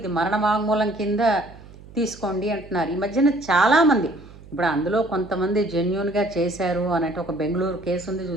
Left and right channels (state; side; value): noise; right; hum, 20 dB below the sound